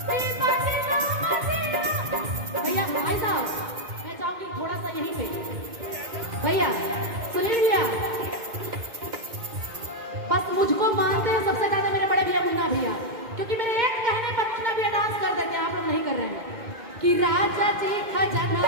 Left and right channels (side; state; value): left; late; 2.1 ms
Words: थोड़ा सा यहीं पे भैया सुनील भैया, बस मुझको मानते हैं सबसे ज्यादा मेरे बड़े भैया मुन्ना भैया, क्योंकि मेरे एक कहने पर मुन्ना भैया डांस कर देते हैं, आप लोग नहीं कर रहे हैं। कि राजा जी